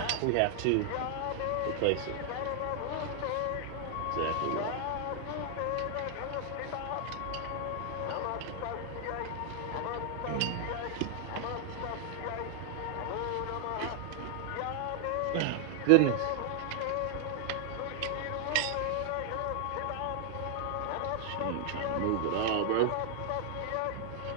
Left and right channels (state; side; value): different; both; correlation 0.00